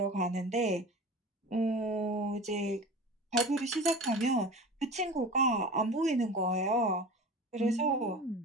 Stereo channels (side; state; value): both; normal; correlation 0.35